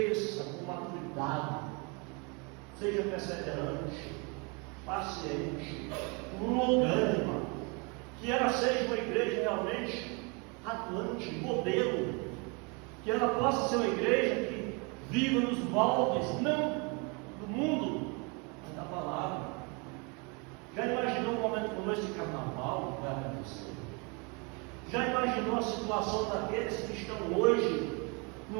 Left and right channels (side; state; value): left; quieter; 31.5 dB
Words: com maturidade, seja perseverante, paciente, longânima, que ela seja uma igreja realmente atuante, modelo, que ela possa ser uma igreja que viva nos moldes, não do mundo, mas da palavra. Já imaginou um momento como esse de carnaval que vai acontecer? Já imaginou a situação daqueles que estão hoje